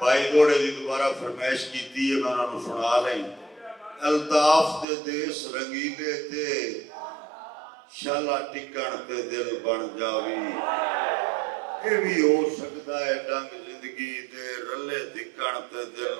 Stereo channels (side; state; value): left; drops out; at 4.9 s